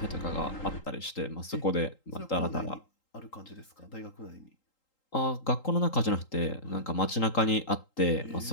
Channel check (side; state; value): right; late; 3.8 ms